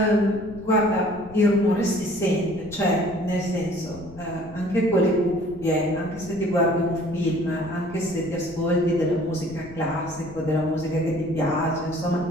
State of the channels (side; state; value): left; noise; rumble, 18 dB below the sound